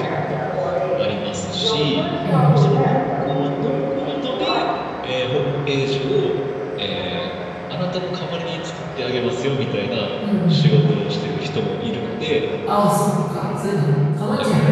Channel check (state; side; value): identical; both; correlation 1.00